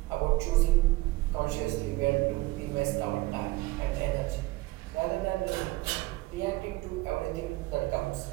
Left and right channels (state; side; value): quieter; left; 20.5 dB